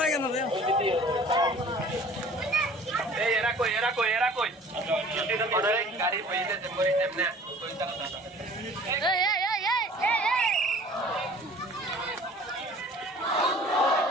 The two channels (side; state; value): both; normal; correlation 0.48